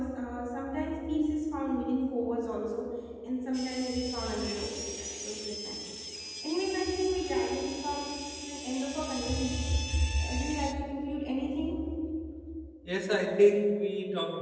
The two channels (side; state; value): both; identical; correlation 1.00